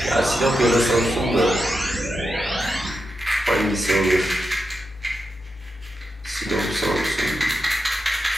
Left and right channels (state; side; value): normal; both; correlation 0.88